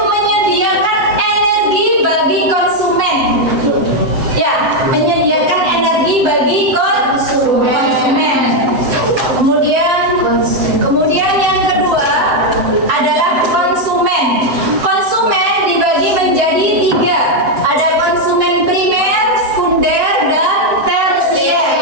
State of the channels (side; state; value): left; late; 7.8 ms